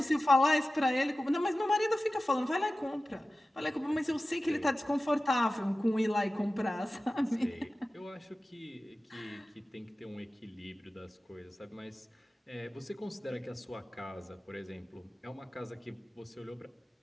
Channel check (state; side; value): normal; both; correlation 0.96